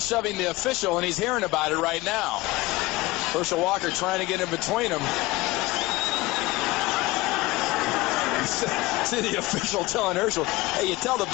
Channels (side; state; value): right; quieter; 20.1 dB